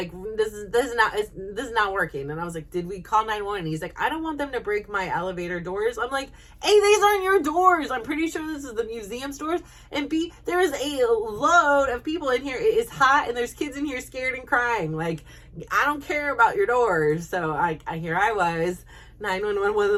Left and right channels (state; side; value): identical; both; correlation 1.00